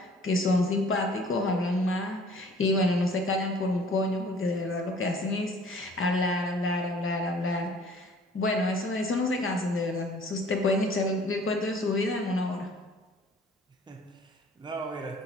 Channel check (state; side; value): normal; both; correlation 0.53